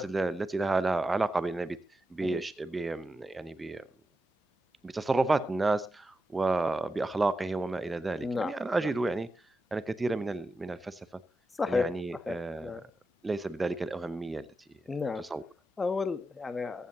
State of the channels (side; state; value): both; normal; correlation 0.90